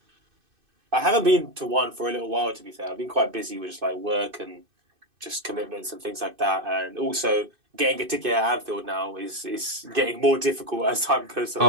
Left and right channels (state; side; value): late; left; 2.5 ms